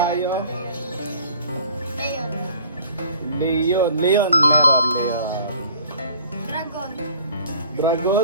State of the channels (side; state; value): both; inverted; correlation -0.51